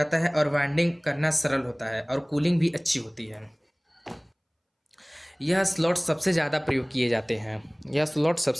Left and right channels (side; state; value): both; identical; correlation 1.00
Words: है और वाइंडिंग करना सरल होता है और कूलिंग भी अच्छी होती है। यह स्लॉट सबसे ज़्यादा प्रयोग किए जाते हैं। यह स्लॉट